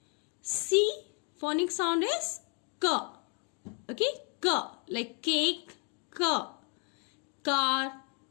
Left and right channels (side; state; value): right; quieter; 37.5 dB